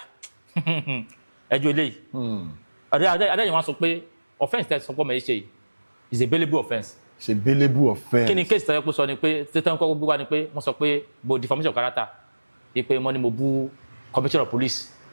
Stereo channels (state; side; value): inverted; both; correlation -1.00